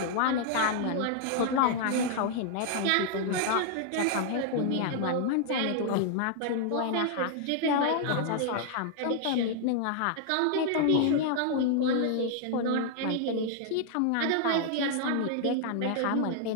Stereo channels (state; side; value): different; both; correlation -0.01